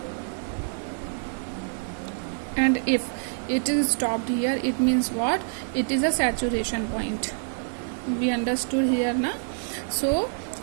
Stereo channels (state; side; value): silent; left; 61 dB below the other